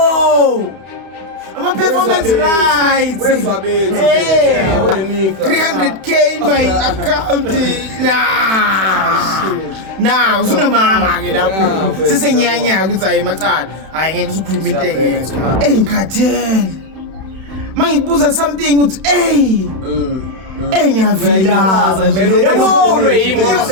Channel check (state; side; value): late; left; 31 ms